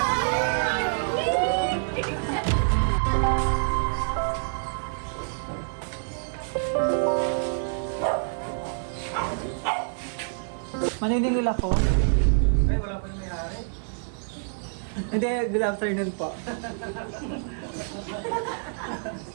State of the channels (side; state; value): left; silent; digital silence